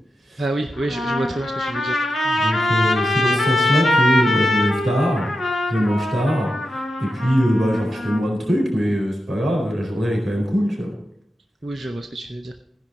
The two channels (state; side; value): normal; both; correlation 0.89